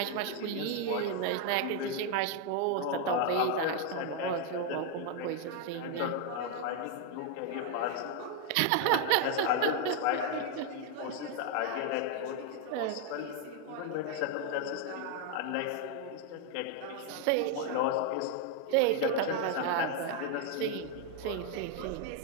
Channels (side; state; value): both; different; correlation 0.01